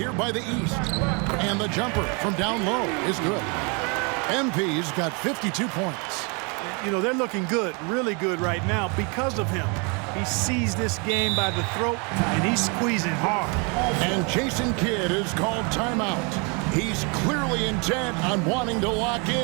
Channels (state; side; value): quieter; left; 32.9 dB